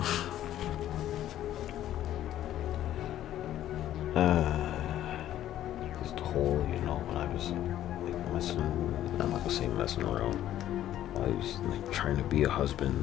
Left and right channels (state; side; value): quieter; right; 12.4 dB